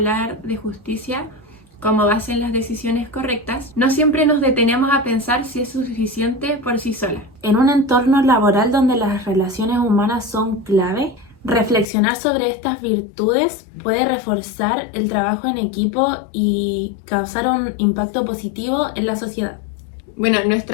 de justicia como base en las decisiones correctas, no siempre nos detenemos a pensar si es suficiente por sí sola. En un entorno laboral donde las relaciones humanas son clave, reflexionar sobre estas virtudes puede reforzar el trabajo en equipo y causar un impacto positivo en la sociedad. Bueno,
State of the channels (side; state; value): right; drops out; at 11.9 s